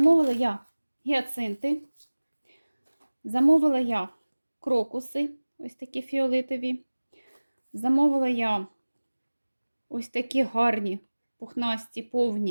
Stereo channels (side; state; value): both; inverted; correlation -1.00